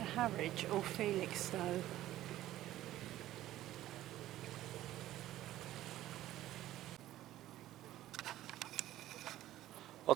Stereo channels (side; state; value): left; quieter; 14.2 dB